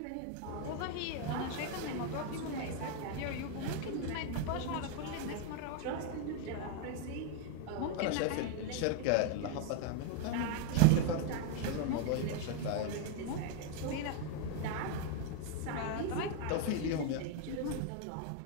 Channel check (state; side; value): different; both; correlation 0.01